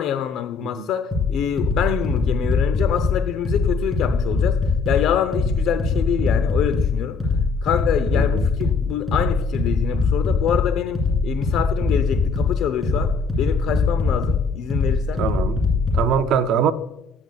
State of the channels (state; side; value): quieter; right; 4.0 dB